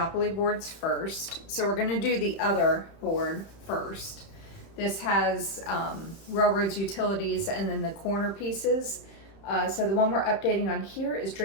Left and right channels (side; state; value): right; late; 31 ms